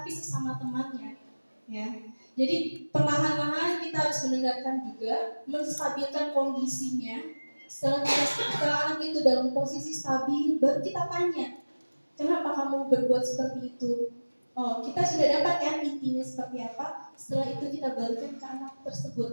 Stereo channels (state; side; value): inverted; both; correlation -1.00